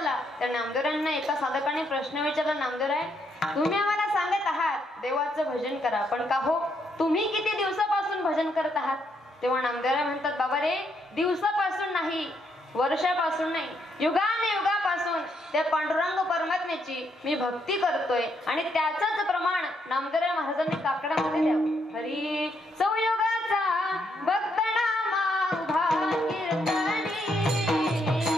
त्या नामदेवरांना एका साधकाने प्रश्न विचारला, नामदेवराय तुम्ही आम्हाला सांगत आहात देवाचं भजन करा, पण का हो तुम्ही किती दिवसापासून भजन करत आहात? तेव्हा नामदेवराय म्हणतात, बाबा रे, दिवसापासून नाही, वर्षापासून नाही, युगाने युगापासून त्या पांडुरंग परमात्म्याची मी भक्ती करतोय. आणि त्याचंच प्रमाण नामदेवराय महाराजांनी काकडामध्ये द्यावं. हरी संयोगाचा भक्त नामा उभा कीर्तनी,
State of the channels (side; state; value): both; normal; correlation 0.75